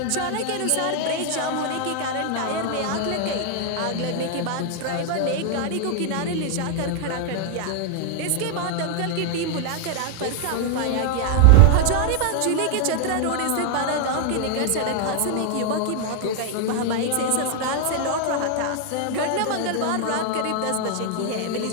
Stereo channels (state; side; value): different; both; correlation 0.00